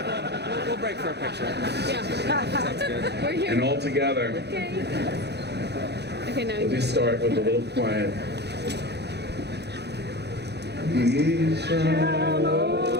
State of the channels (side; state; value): left; late; 0.49 ms